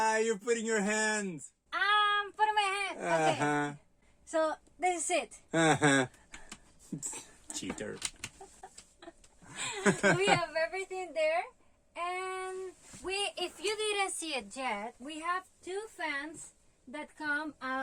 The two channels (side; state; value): both; identical; correlation 1.00